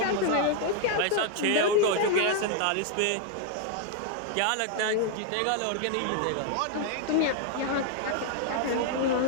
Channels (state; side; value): different; both; correlation 0.00